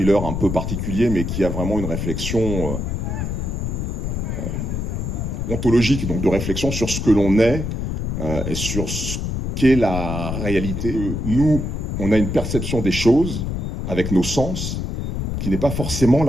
un peu particulier, mais qui a vraiment une réflexion ontologique, donc de réflexion sur ce que l'on est et sur ce qu'est la réalité. Nous, on a une perception des choses avec nos sens qui n'est pas forcément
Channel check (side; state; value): left; noise; rumble, 2 dB below the sound